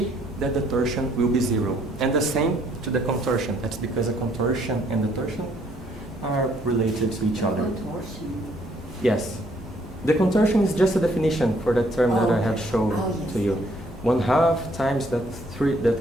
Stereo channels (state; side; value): normal; both; correlation 0.66